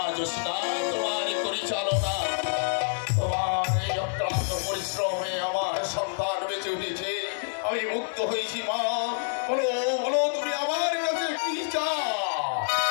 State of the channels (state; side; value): silent; right; 60 dB below the other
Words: জোসনা, তোমার পরিচালনা, তোমার এই অক্লান্ত পরিশ্রমে আমার সন্তান বেঁচে উঠেছে। আমি মুক্ত হয়েছি মা। বলো বলো, তুমি আমার কাছে কি চাও?